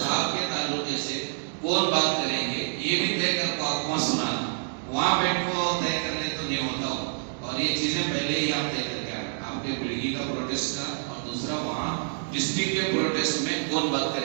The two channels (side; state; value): left; silent; digital silence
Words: آپ کے تعلقے سے کون بات کریں گے یہ بھی طے کر کو آپ کو سنانا. وہاں بیٹھ کو طے کر لے تو نہیں ہوتا ہو, اور یہ چیزیں پہلے ہی آپ طے کر کے آنا. آپ کے بلگی کا پروٹیسٹ کا اور دوسرا وہاں ڈسٹرکٹ کے پروٹیسٹ میں کون بات